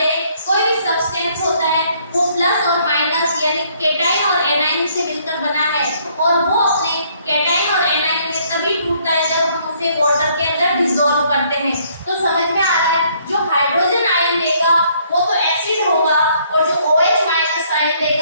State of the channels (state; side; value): inverted; both; correlation -0.65